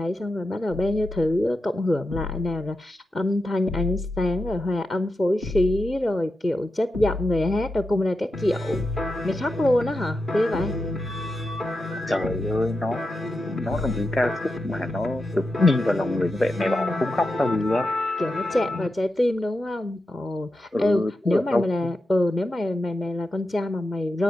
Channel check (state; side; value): normal; both; correlation 0.89